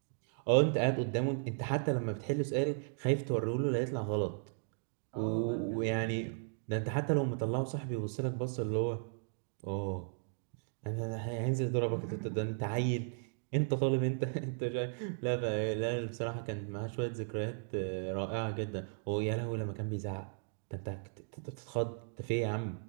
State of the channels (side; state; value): left; silent; digital silence